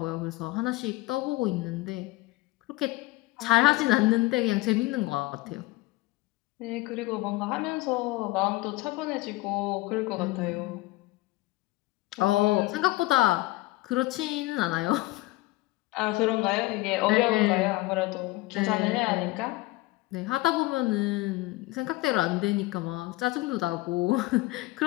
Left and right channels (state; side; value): quieter; right; 20.0 dB